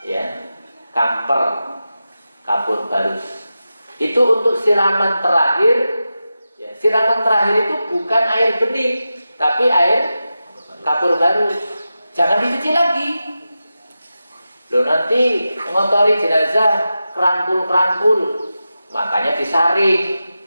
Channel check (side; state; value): both; inverted; correlation -0.92